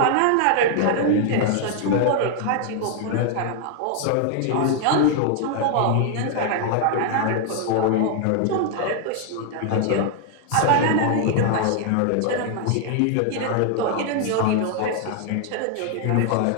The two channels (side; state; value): both; different; correlation 0.00